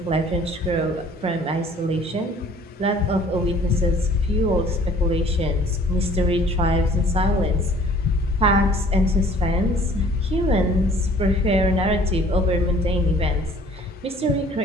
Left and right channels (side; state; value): both; normal; correlation 0.53